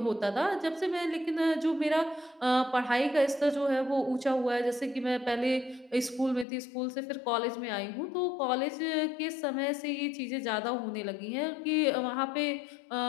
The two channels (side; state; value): right; drops out; at 6.5 s